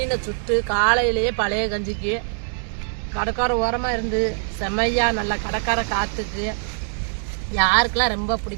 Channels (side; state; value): left; silent; digital silence